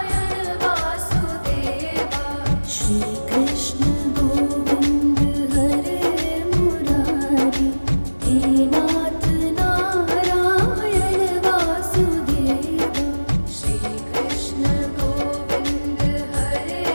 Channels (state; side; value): inverted; both; correlation -1.00